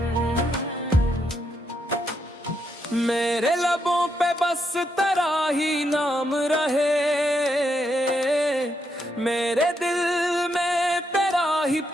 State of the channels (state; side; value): normal; both; correlation 0.80